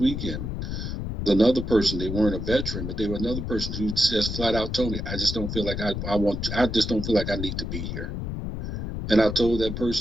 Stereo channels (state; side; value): noise; left; rumble, 4 dB below the sound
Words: Another person, they weren't a veteran, but they were another person who just flat out told me, I just don't feel like I just don't feel like I need to be here. And I told that